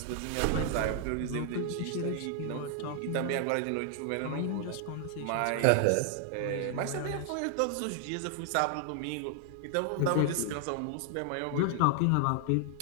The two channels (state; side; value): different; both; correlation 0.00